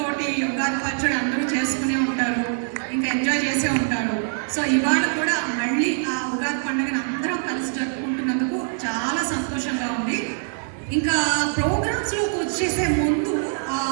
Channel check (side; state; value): left; silent; 63 dB below the other